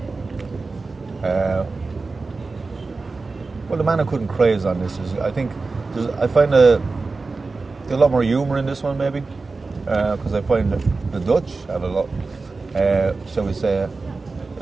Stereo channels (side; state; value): left; quieter; 3.9 dB